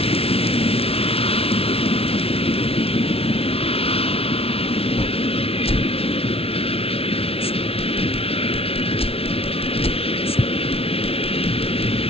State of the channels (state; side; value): late; right; 0.28 ms